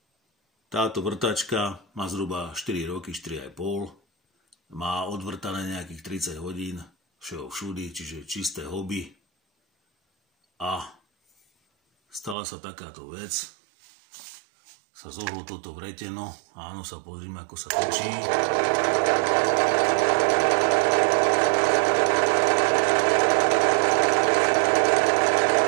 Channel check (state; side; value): drops out; left; at 12.4 s